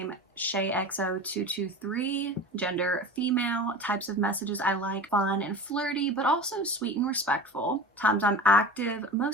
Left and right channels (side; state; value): both; normal; correlation 0.33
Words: ShayXO223, gender female, types of messages I like fun and flirty, but also sweet and respectful. Times I'm active,